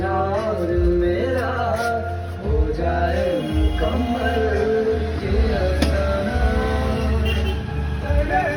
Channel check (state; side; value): identical; both; correlation 1.00